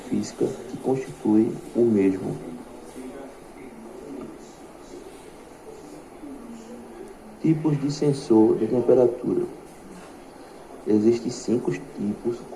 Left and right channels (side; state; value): both; identical; correlation 1.00